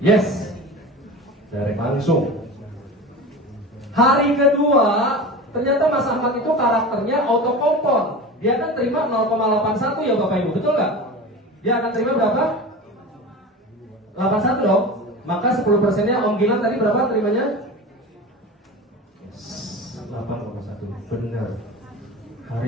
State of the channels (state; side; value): normal; both; correlation 0.31